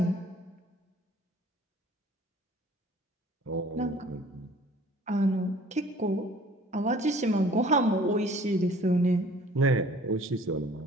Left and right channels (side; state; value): both; normal; correlation 0.52